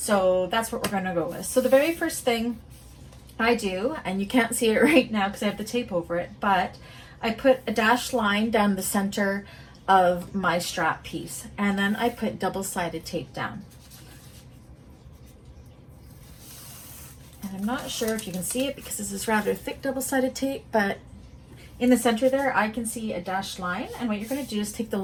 that's what we're going to go with. So the very first thing I do, and you can't see it right now because I have the tape over it, but I put a dashed line down the center of my strap piece, and then I put double-sided tape down. And I'm not sure if you can see it because this is rather thick double-sided tape, but in the center there I can see a dashed line, and what you're going to do is take the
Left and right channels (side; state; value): both; identical; correlation 1.00